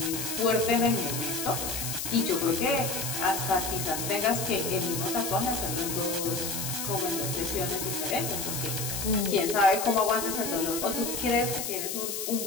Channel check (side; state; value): left; noise; hiss, 4 dB below the sound